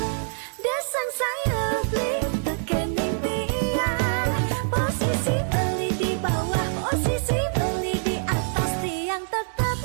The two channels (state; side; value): silent; left; digital silence